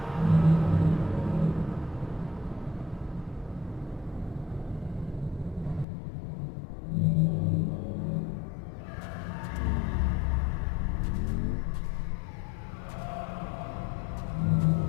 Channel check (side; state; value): right; drops out; at 5.9 s